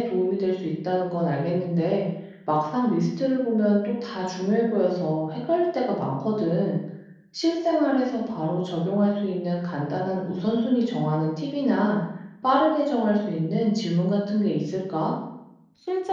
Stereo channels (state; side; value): identical; both; correlation 1.00